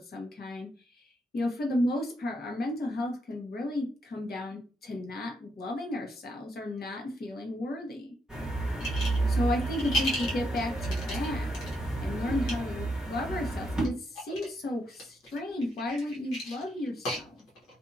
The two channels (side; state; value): both; normal; correlation 0.78